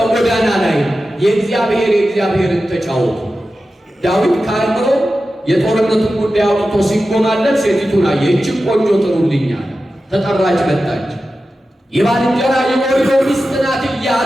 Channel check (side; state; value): both; normal; correlation 0.93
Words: ላይ የእግዚአብሔርን ተጫወቱ። ዳዊት ከአእምሮ የጦርነቱን ጉዳይ አውጥቶ ሲጎማለት ሴቲቱን አየ። ይህችን ቆንጆ ጥሩልኛል። ተጠራች፣ መጣች። የባልንጀራ የኦርዮ ሚስት ናት